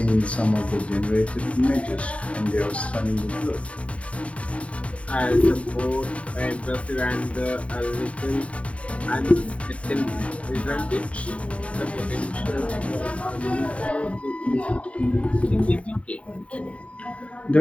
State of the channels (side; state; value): right; late; 0.064 ms